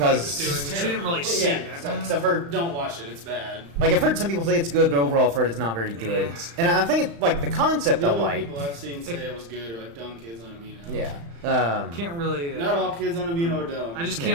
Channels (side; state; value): left; late; 35 ms